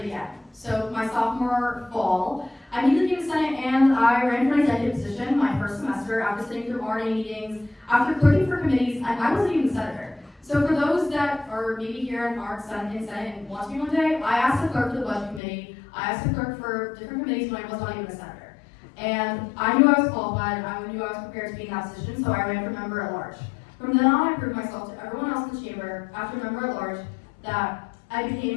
again. So my sophomore fall, I immediately came to Senate and I ran for an executive position my first semester after sitting through RNA meetings, after clerking for committees, and I wasn't even a senator. So for those that are maybe here and aren't in Senate and want to be one day, I asked the clerk for the budget committee, I asked the clerk for different committees when I was not even a senator. And I knew I was qualified, I knew I was prepared to be in that position, so I ran for member at large. From then on, I proved myself to everyone else in the chamber, after member at large, that I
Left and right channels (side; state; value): right; drops out; at 15.4 s